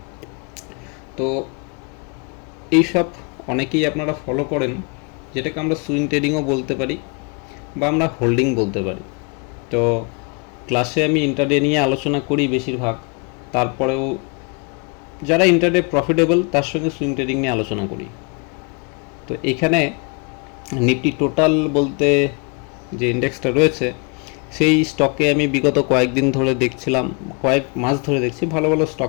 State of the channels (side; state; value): right; quieter; 33.7 dB